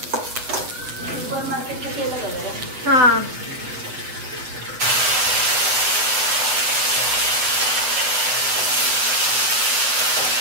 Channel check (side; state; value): left; late; 7.8 ms